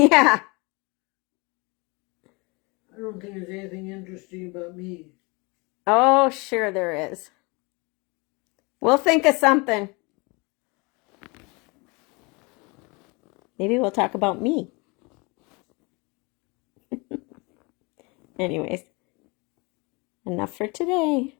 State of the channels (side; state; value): right; quieter; 28.0 dB